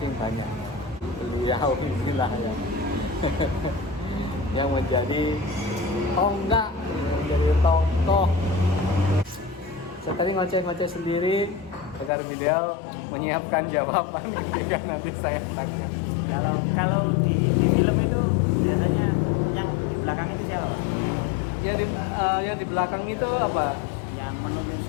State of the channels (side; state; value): right; drops out; at 12.1 s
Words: banyak. Beliau inilah yang menjadi tonggak, menjadi tokoh. Saya tadi ngoceh-ngoceh sendiri agar beliau menyiapkan jawaban dan nanti saya tanya. Kalau di film itu biasanya yang di belakang itu siapa, Pak? Yang di belakang itu apa? Yang